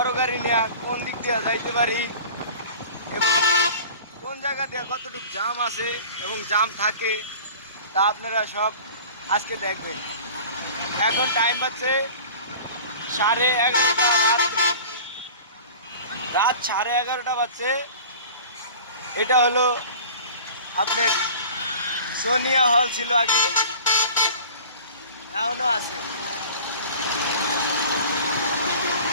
গাড়ি নিয়ে কোন দিক দিয়ে যাইতে পারি এবং কোন জায়গা দিয়ে কতটুকু জাম আছে এবং জাম থাকে তা আপনারা সব আজকে দেখবেন। এখন টাইম বাজছে 11:30 রাত 11:30 বাজছে। এটা হলো আপনার সোনিয়া হল ছিল আগে, এখনো আছে।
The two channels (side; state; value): both; inverted; correlation -0.41